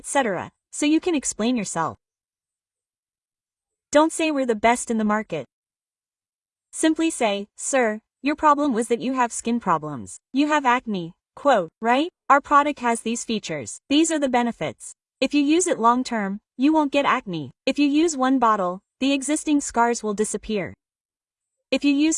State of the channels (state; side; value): identical; both; correlation 1.00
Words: so you can explain yourself. Don't say we're the best in the market. Simply say, "Sir, your problem was that you have skin problems. You have acne." Quote, right? Our product has these features. These are the benefits. If you use it long term, you won't get acne. If you use 1 bottle, the existing scars will disappear. If you